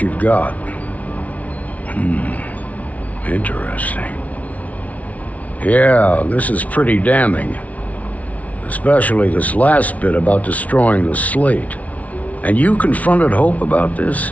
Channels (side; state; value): right; late; 0.069 ms